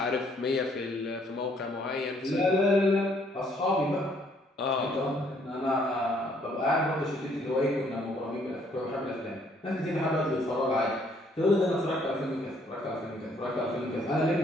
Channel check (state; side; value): normal; both; correlation 0.65